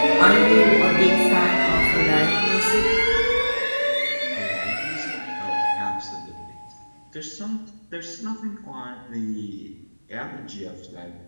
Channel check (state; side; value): inverted; both; correlation -1.00